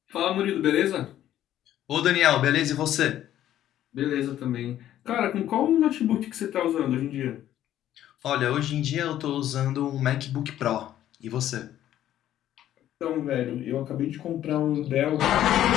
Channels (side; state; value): right; quieter; 12.1 dB